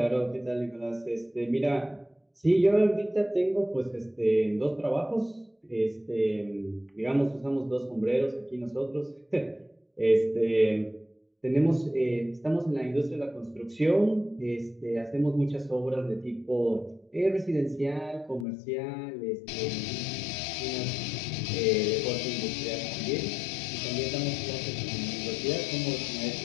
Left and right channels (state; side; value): drops out; right; at 18.4 s